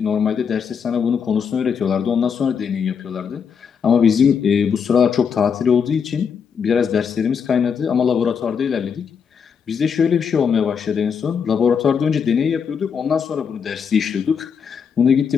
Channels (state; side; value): quieter; right; 6.7 dB